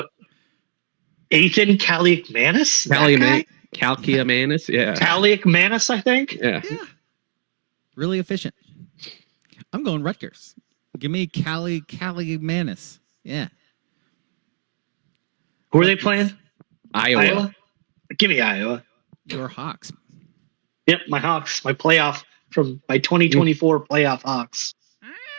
Ethan Kaliakmanis? Kalkiamanis, yeah. Kaliakmanis, I think. Yeah. Really efficient. I'm going Rutgers. Give me Kaliakmanis. Yeah. Who are they playing? Iowa. Give me Iowa. Your Hawks. Yep, my Hawks. My playoff from my 2024 playoff Hawks.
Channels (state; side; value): silent; left; digital silence